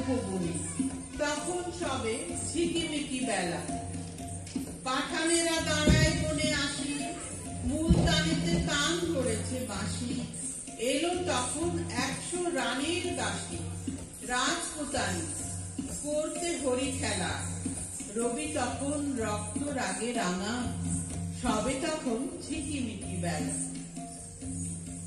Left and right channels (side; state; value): both; identical; correlation 1.00